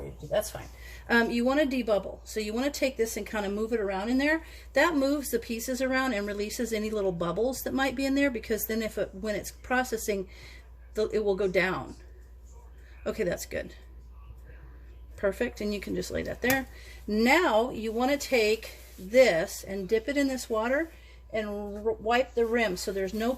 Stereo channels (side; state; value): both; identical; correlation 1.00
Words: you. That's fine. You want to debubble. So you want to take this and kind of move it around in there. That moves the pieces around and releases any little bubbles that might be in there, because then when it's processing, it will go down. Okay, that's good. Perfect, and you can just lay that there. Now you want to take this and dip it in this water and wipe the rim so there's no